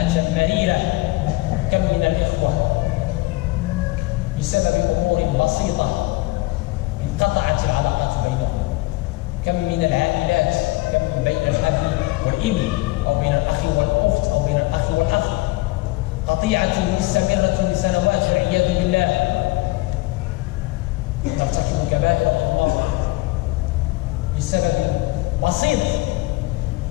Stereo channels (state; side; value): quieter; right; 20.9 dB